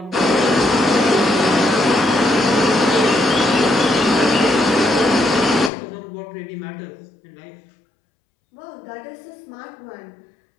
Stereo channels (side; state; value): right; drops out; at 5.7 s